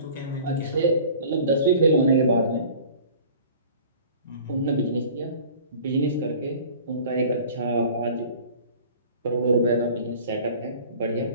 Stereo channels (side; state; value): both; inverted; correlation -0.45